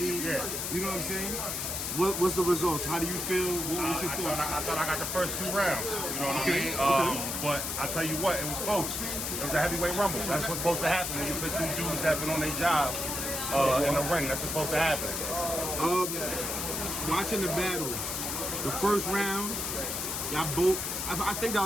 You know what I'm saying? What's the results? How do you feel? What's your thoughts? I thought I got the first 2 rounds. You know what I mean? But I tell you what, it was close. It was a heavyweight rumble. That's what's supposed to happen when you put 2 dudes that have been on their job in the ring. That's what's supposed to happen. Watching the battle, the first round, y'all both. I think that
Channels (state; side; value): noise; left; hiss, 2 dB below the sound